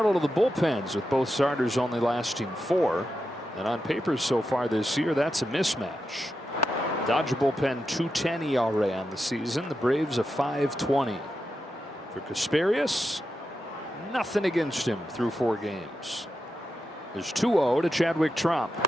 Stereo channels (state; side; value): normal; both; correlation 0.88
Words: of the bullpens, with both starters only lasting 4. And on paper so far this year, that's a mismatch. Dodger bullpen 2.10 ERA on the season. The Braves a 5.20. For Kasperius, nothing against him through 4 games. There's 2-0 to Chadwick Tromp.